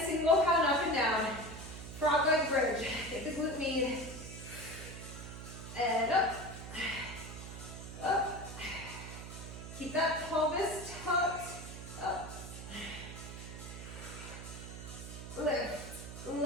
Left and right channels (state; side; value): noise; right; hum, 10 dB below the sound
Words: single pound up and down. Frog leg bridge. Get the glute med. And up. Up. Keep that pelvis tucked. Up. Lift.